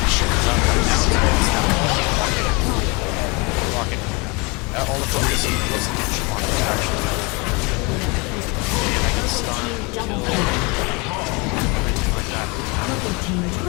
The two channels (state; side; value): quieter; right; 28.5 dB